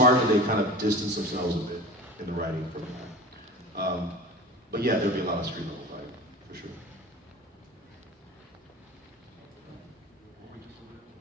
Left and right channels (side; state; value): both; normal; correlation 0.35